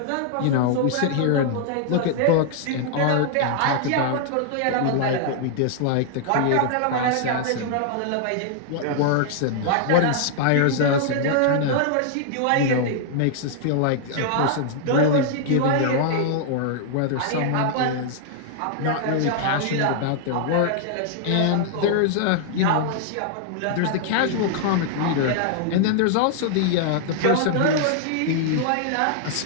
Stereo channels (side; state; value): both; different; correlation -0.01